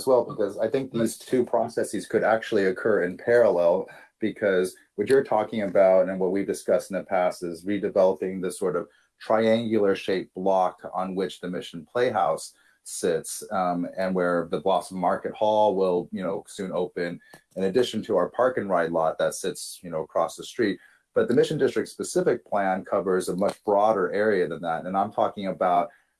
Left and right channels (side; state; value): both; identical; correlation 1.00